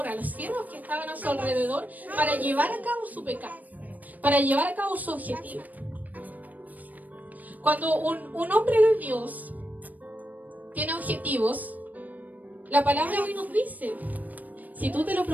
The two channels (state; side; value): late; left; 0.080 ms